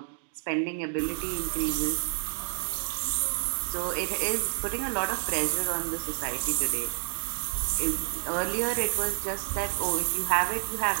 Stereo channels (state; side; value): silent; left; digital silence